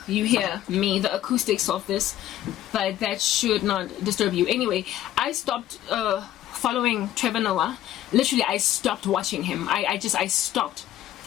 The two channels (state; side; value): quieter; right; 13.0 dB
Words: you hear me, the acoustics of this, but that should not disturb you. Anyway, I stopped following Trevor Noah. Literally, I stopped watching him. I stopped.